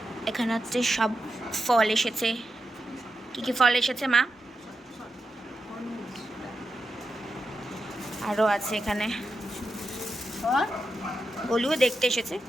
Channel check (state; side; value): normal; both; correlation 0.88